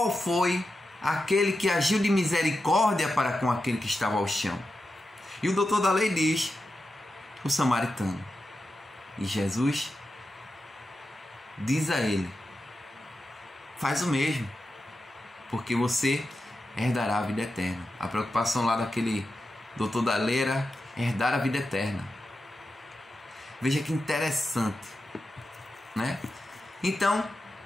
foi aquele que agiu de misericórdia para com aquele que estava ao chão? E o doutor da lei diz: o samaritano. E Jesus diz a ele: faz o mesmo, porque você herdará a vida eterna. A preocupação lá daquele doutor da Leira, herdar a vida eterna. Veja que interessante, né? Então,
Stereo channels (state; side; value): normal; both; correlation 0.90